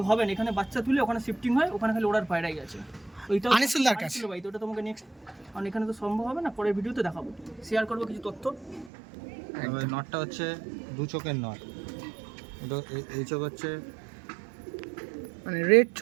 হবে না, এখানে বাচ্চা তুলে ওখানে শিফটিং হয়, ওখানে খালি ওড়ার পায়রাই আছে। ওইটা আনিসুলদার কাছে। ভাই তো ওটা তোমাকে নেক্সট, কারণ এখানে তো সম্ভব হবে না, পরের ভিডিওতে দেখাবো, শেয়ার করবো কিছু তথ্য। তবে নটটা হচ্ছে 2 চোখের নট, এটা এই চোখ হচ্ছে মানে রেড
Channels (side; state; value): left; drops out; at 8.9 s